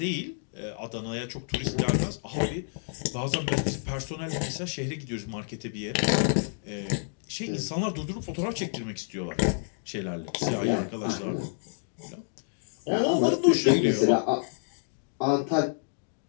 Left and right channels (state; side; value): silent; right; digital silence